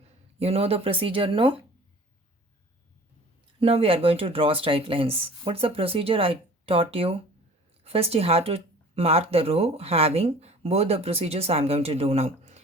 You know the procedure, no? Now we are going to draw straight lines. What's the procedure I taught you? First you have to mark the row having both the procedures I am going to do now.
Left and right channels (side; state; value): both; normal; correlation 0.46